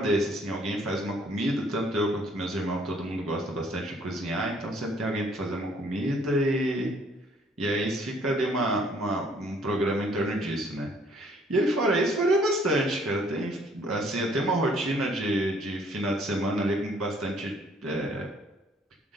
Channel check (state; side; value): normal; both; correlation 0.62